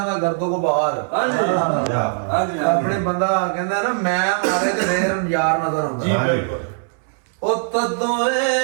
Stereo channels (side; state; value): left; silent; digital silence